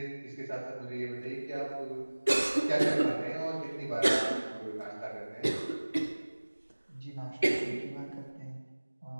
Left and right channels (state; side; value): inverted; both; correlation -1.00